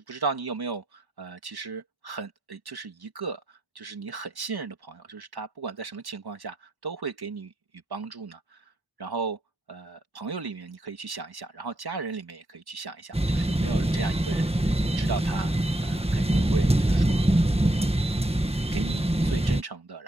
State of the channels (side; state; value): both; normal; correlation 0.79